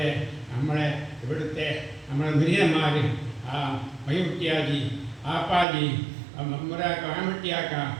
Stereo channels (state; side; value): drops out; left; at 5.7 s